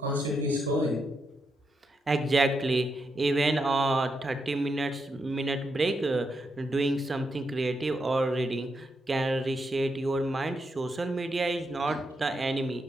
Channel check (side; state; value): both; normal; correlation 0.83